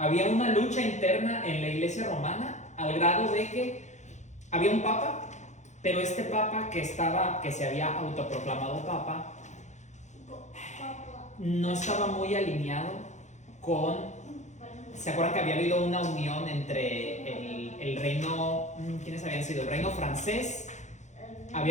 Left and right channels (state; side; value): late; right; 0.34 ms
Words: una lucha interna en la iglesia romana, al grado de que había un papa, pero este papa que se había autoproclamado papa no estaba muy alineado con... ¿Se acuerdan que había habido una unión entre el reino... ¿Quiénes habían sido? El reino francés.